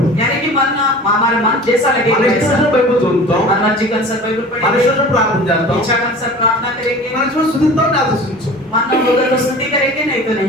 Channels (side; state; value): both; normal; correlation 0.40